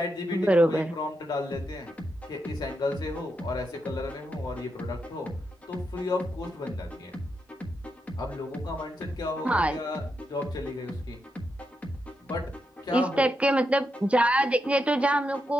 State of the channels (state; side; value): normal; both; correlation 0.84